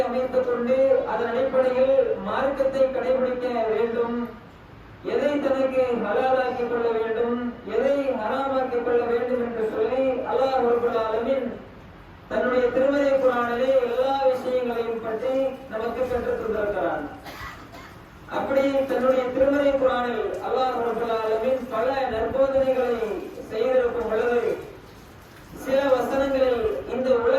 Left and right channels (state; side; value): identical; both; correlation 1.00